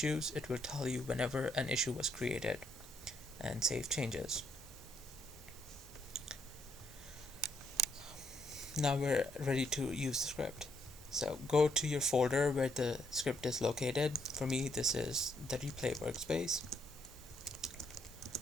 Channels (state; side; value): normal; both; correlation 0.73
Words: It will tell you whenever an issue was created, and save changes. Now we're ready to use the script. So go to your folder where the script is located. For me, this is the replay workspace.